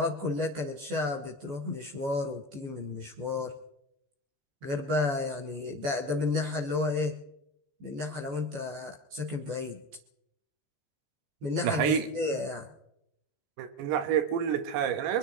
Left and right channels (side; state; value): left; late; 14 ms